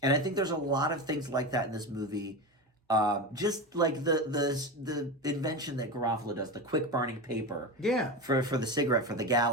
I think there's a lot of things like that in this movie. Just like the invention that Garofalo does, the quick burning paper. Yeah. For the cigarette, for the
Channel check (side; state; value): both; normal; correlation 0.21